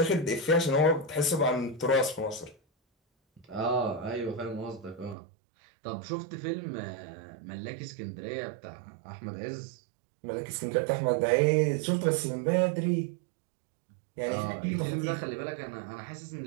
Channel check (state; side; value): drops out; left; at 5.2 s